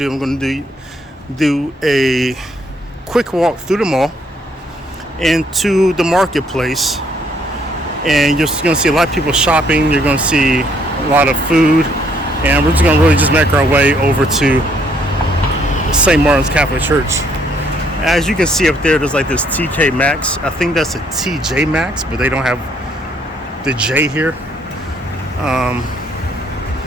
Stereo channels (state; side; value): normal; both; correlation 0.68